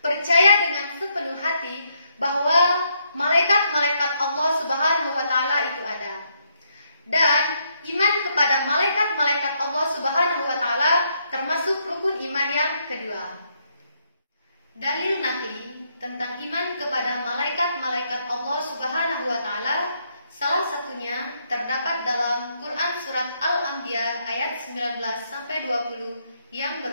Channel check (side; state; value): both; inverted; correlation -0.75